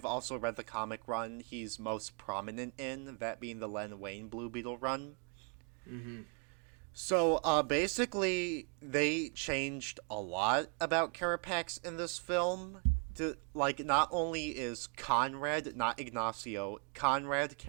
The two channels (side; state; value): left; quieter; 37.6 dB